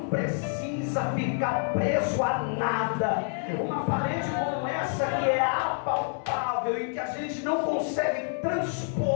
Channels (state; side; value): silent; right; 59 dB below the other